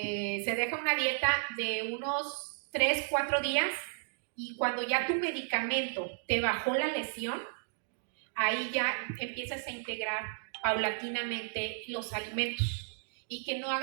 deja una dieta de unos 3-4 días, y cuando ya tu medicamento te bajó la lesión, ahí ya empiezas a integrar paulatinamente los alimentos, y que no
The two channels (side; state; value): left; silent; digital silence